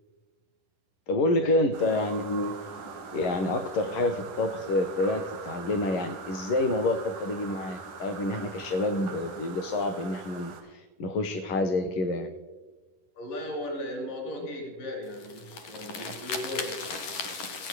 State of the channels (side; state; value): right; late; 11 ms